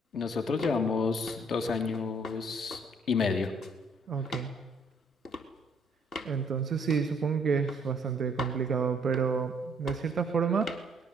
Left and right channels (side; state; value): both; normal; correlation 0.64